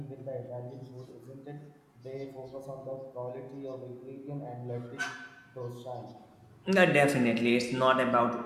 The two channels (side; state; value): both; identical; correlation 1.00